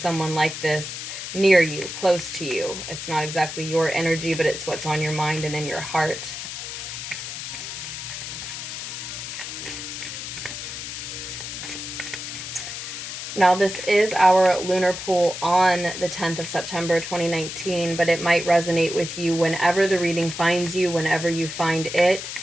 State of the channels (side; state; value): left; noise; hiss, 7 dB below the sound